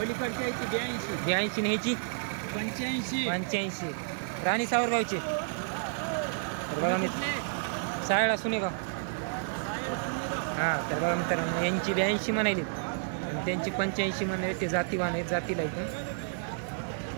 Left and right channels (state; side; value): silent; left; digital silence